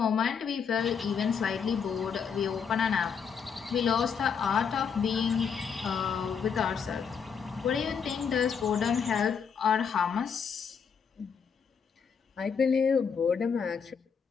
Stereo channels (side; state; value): right; quieter; 6.5 dB